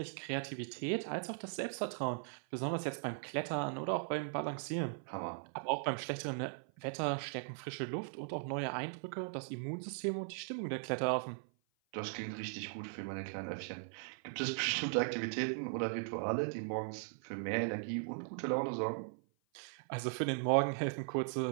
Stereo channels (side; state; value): left; silent; 52 dB below the other